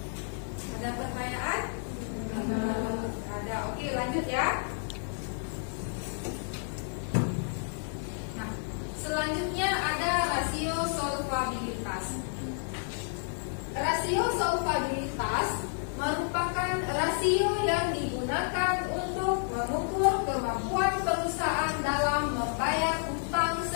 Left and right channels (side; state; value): right; silent; 57 dB below the other